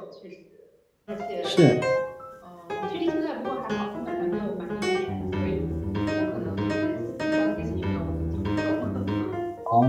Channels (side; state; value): both; identical; correlation 1.00